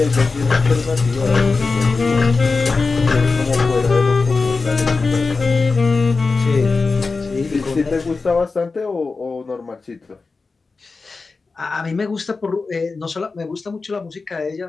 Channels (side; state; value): right; quieter; 4.1 dB